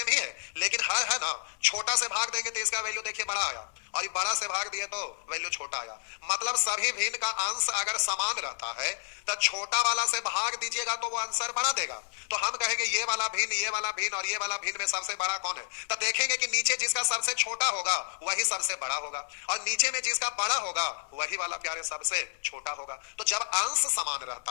ही है। लेकिन हर है ना, छोटा से भाग देंगे तो इसका वैल्यू देखिए बड़ा आया, और ये बड़ा से भाग दिए तो वैल्यू छोटा आया। मतलब सभी भिन्न का अंश अगर समान रहता है तो छोटा वाला से भाग दीजिएगा तो वो आंसर बड़ा देगा। तो हम कहेंगे ये वाला भिन्न, ये वाला भिन्न और ये वाला भिन्न में सबसे बड़ा कौन है? तो देखेंगे कि नीचे जिसका सबसे छोटा होगा वही सबसे बड़ा होगा, और नीचे में जिसका बड़ा होगा वही वाला प्यारे सबसे छोटा होगा। तो जब अंश समान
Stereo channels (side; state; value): right; silent; 58 dB below the other